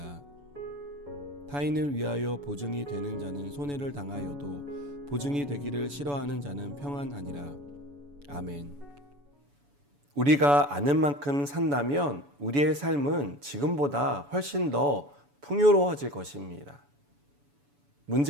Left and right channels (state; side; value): late; left; 7.0 ms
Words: 타인을 위하여 보증이 되는 자는 손해를 당하여도 보증이 되기를 싫어하는 자는 평안하니라. 아멘. 우리가 아는 만큼 산다면 우리의 삶은 지금보다 훨씬 더 풍요로워질 것입니다.